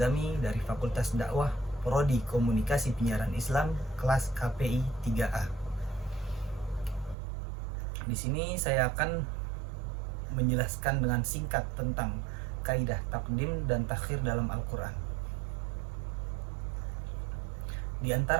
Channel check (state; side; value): drops out; left; at 7.2 s